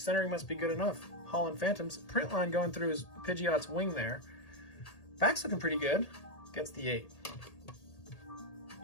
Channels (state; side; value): late; right; 1.8 ms